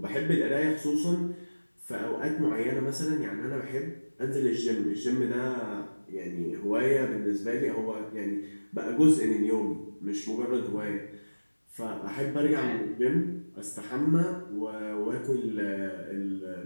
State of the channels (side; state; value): both; inverted; correlation -1.00